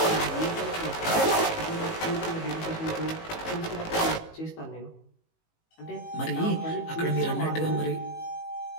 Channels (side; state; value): right; late; 18 ms